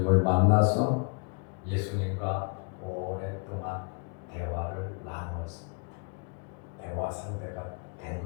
만나서 예수님과 오랫동안 대화를 나누었습니다. 대화 상대가 된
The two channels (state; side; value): quieter; right; 35.7 dB